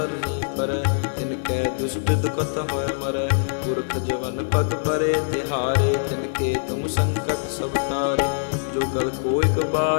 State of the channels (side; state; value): right; silent; digital silence